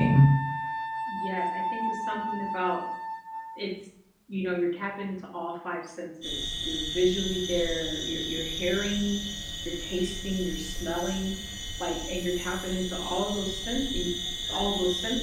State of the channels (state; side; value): identical; both; correlation 1.00